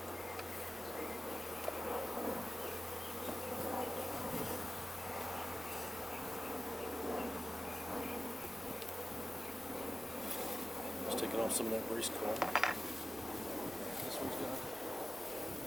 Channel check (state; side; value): noise; left; rumble, 25 dB below the sound